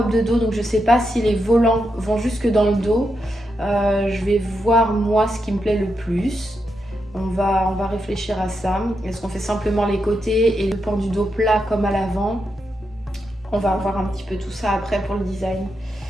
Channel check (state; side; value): normal; both; correlation 0.84